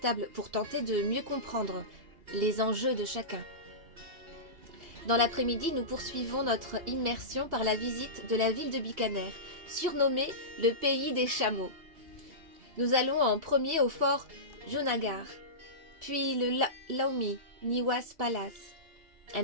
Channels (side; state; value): left; late; 2.8 ms